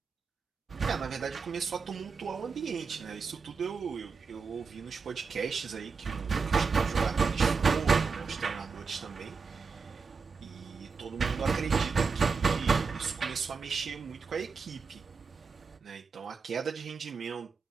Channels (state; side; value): quieter; left; 5.1 dB